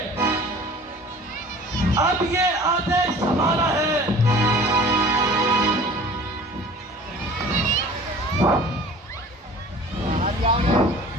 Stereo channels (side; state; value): both; normal; correlation 0.45